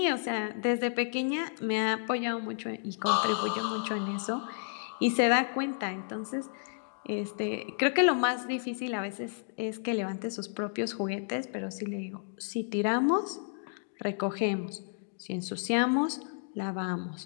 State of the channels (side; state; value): right; silent; digital silence